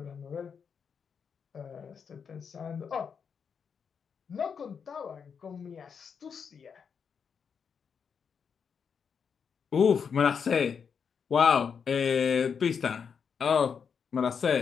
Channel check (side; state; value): right; quieter; 6.5 dB